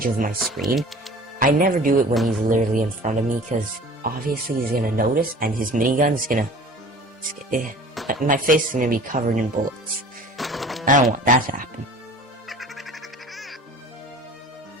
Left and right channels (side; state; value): both; normal; correlation 0.44